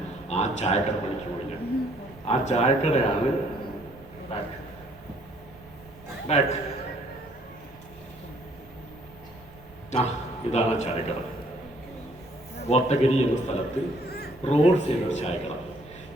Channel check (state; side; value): noise; right; rumble, 22 dB below the sound